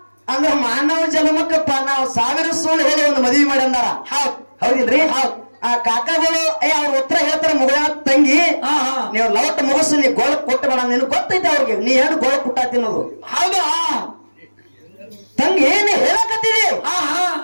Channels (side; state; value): both; inverted; correlation -1.00